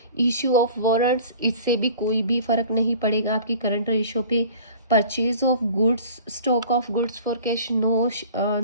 इशू ऑफ वारंट्स, इससे भी कोई भी फर्क नहीं पड़ेगा आपकी करंट रेशियो पे। Purchase of goods, stock of goods for cash,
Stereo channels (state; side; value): inverted; both; correlation -0.46